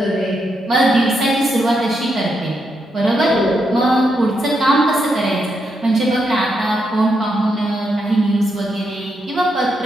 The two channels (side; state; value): both; normal; correlation 0.81